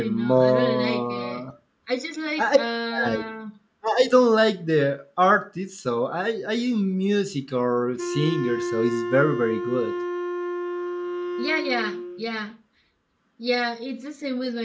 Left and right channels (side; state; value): both; identical; correlation 1.00